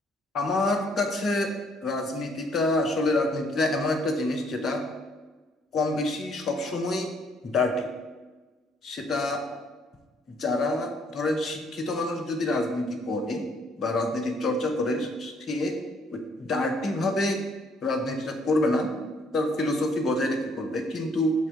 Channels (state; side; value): normal; both; correlation 0.66